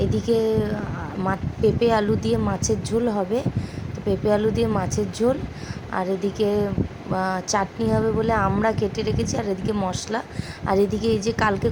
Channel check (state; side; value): identical; both; correlation 1.00